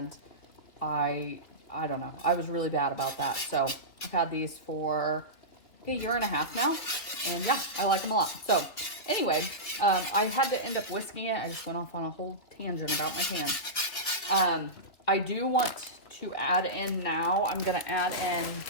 I don't know. I was really bad about that. So I've had these for a year and a half now. And yeah, I like them a lot. So anyway, I had to end up whisking it. I just went off on a whole tangent about my pan. I do want to add in now, I'm going to add in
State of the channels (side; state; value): right; late; 3.2 ms